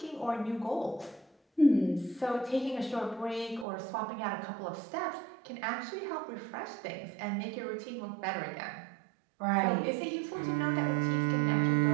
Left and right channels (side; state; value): left; drops out; at 3.7 s